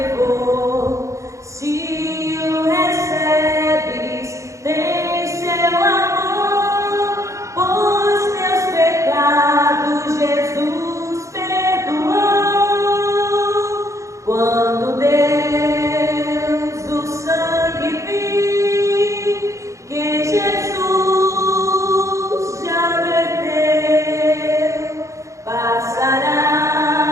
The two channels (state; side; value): late; left; 0.15 ms